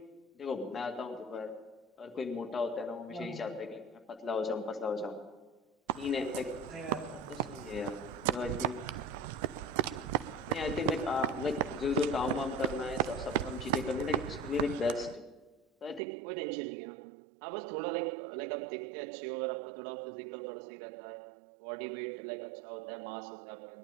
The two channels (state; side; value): drops out; left; at 16.0 s